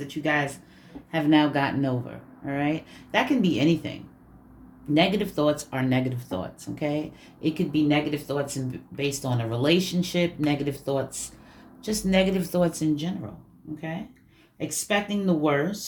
you guys have now gotten over. All right? That can be anything. Negative thoughts are negative thoughts, okay? It could be negative thoughts based on a relationship, negative thoughts, just negative thoughts in general, okay? Expecting the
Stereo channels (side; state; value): both; identical; correlation 1.00